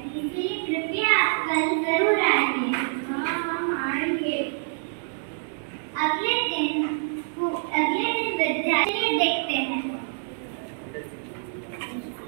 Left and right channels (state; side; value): silent; left; digital silence